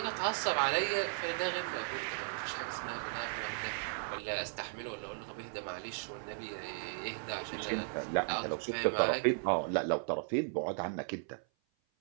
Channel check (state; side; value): silent; left; 54 dB below the other